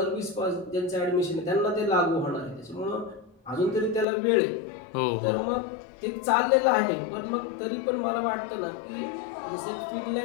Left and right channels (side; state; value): right; drops out; at 4.0 s